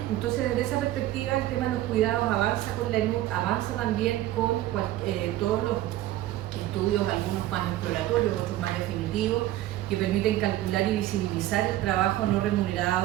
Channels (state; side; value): quieter; left; 14.7 dB